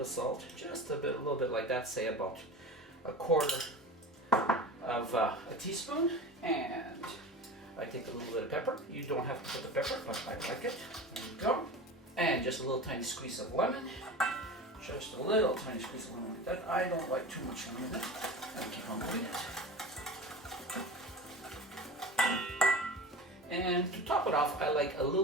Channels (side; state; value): both; normal; correlation 0.33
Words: salt, just a little bit like that, say about 1/4 of a teaspoon, and I take a little bit of pepper. You don't have to put the pepper, but I like it. There you go. And just a little tiny squeeze of lemon. Just a little tiny squeeze of lemon like that. I don't like too much lemon in it. And keep on moving it. And to top it off, I like a